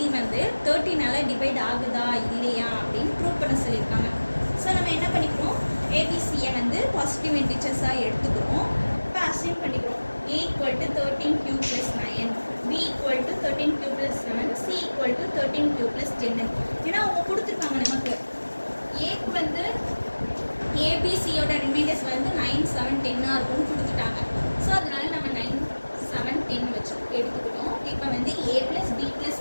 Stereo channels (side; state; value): both; inverted; correlation -1.00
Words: வந்து 13ஆல டிவைட் ஆகுதா இல்லையா அப்படின்னு ப்ரூவ் பண்ண சொல்லியிருக்காங்க. ஸோ நம்ம என்ன பண்ணிக்கிறோம், ஏபிசியை வந்து பாசிட்டிவ் இன்டிஜர்ஸாக எடுத்துக்கிறோம். இப்போ அசைன் பண்ணிக்கிறோம். A equal to 13q plus 9, B equal to 13q plus 7, C equal to 13q plus 10. ஏன்னா அவங்க கொடுத்துருக்காங்க நமக்கு ஏக்கு வந்து ஏபிசியோட ரிமைண்டர்ஸ் வந்து 9, 7, 10 இருக்கும்னு கொடுத்துட்டாங்க. ஸோ அதனால நம்ம 9, 7, 10 வச்சு எடுத்துக்கிட்டோம். இப்போ வந்து A plus B plus